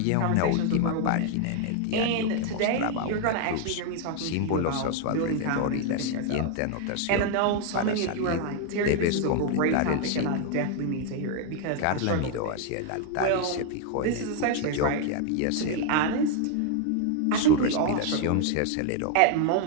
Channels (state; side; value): different; both; correlation 0.00